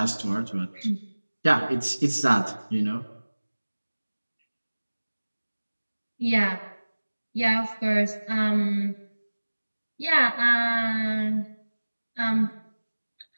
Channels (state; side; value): inverted; both; correlation -1.00